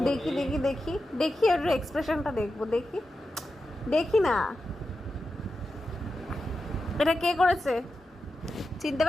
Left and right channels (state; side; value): normal; both; correlation 0.90